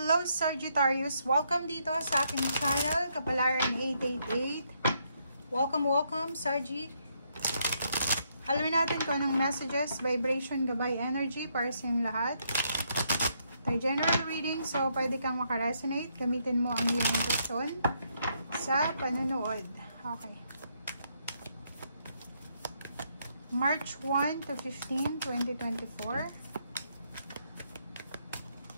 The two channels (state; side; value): inverted; both; correlation -0.75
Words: Sagittarius! Welcome dito sa aking channel, Kapalaran 888. Welcome Sargi! Alamin natin kung anong messages, vibration, gabay, energy para sa inyong lahat. Ito general reading, so pwede kang makaresonate. Gamitin mo ang iyong intuition sa panonood. Okay. March 1 to 15, 2024.